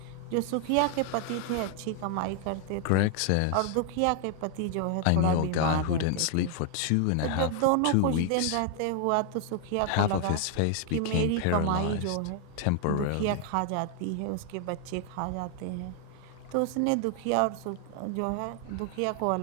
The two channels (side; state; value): both; different; correlation 0.00